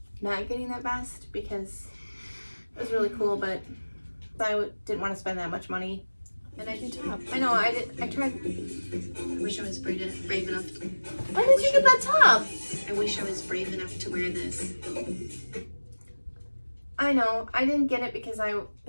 not getting that vest because it was really cool, but I didn't want to spend that much money. And I do top. I know, I tried. I wish I was brave enough. Why did you get that top? I wish I was brave enough to wear this. I know, I didn't get it because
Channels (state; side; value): inverted; both; correlation -1.00